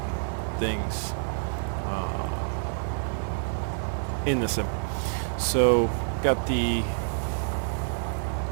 things in the sim. So, got the...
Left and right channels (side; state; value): left; silent; digital silence